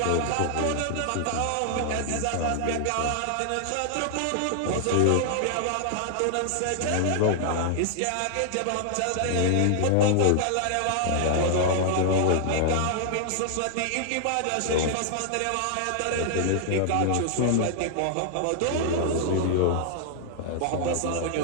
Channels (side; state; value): both; different; correlation -0.01